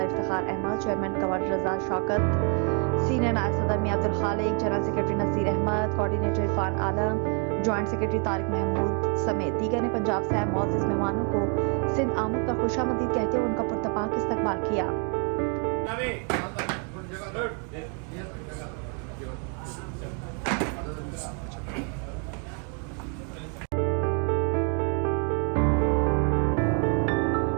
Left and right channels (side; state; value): left; quieter; 37.9 dB